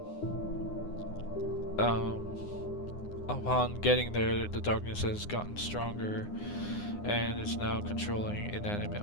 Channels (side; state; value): right; late; 9.7 ms